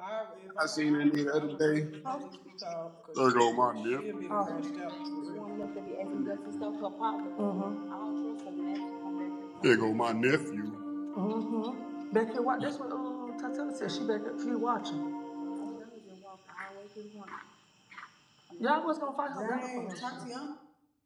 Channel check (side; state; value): both; identical; correlation 1.00